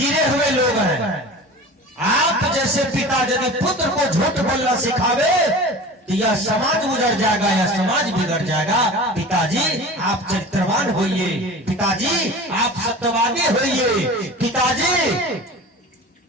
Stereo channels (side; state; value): both; normal; correlation 0.37